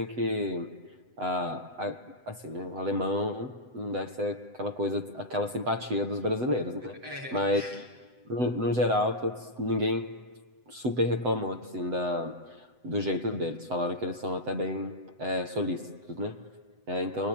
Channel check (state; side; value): late; left; 7.9 ms